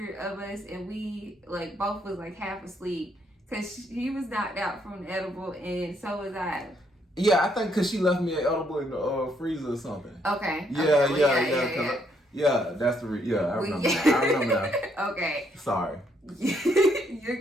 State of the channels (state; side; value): normal; both; correlation 0.72